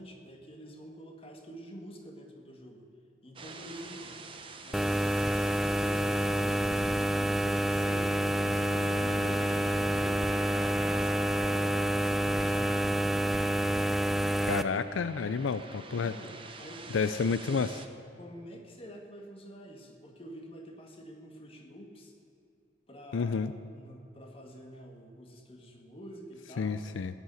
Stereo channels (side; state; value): both; normal; correlation 0.81